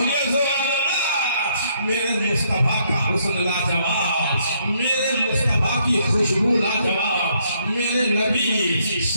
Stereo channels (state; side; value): inverted; both; correlation -0.70